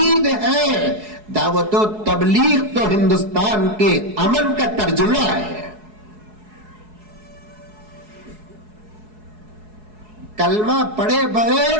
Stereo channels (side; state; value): left; late; 4.7 ms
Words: ہے. دعوت و تبلیغ تو ہندوستان کے امن کا ترجمہ ہے. کلمہ پڑھے